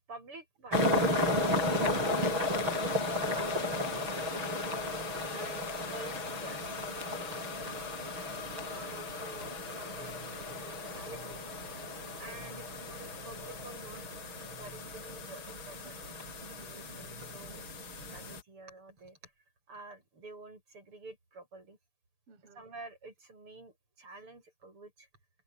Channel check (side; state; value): left; late; 6.8 ms